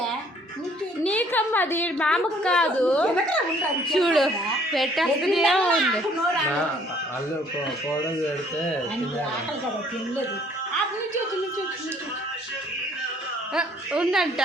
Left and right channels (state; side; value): normal; both; correlation 0.60